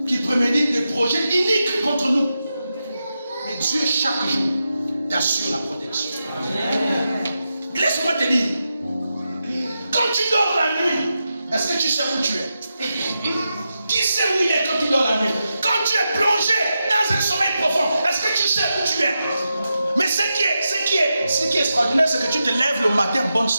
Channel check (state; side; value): inverted; both; correlation -0.89